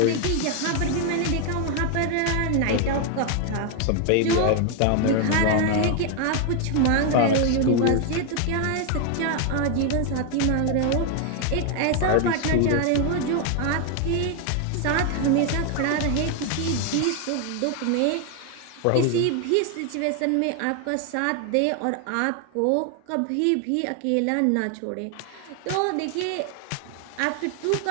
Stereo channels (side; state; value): both; different; correlation 0.01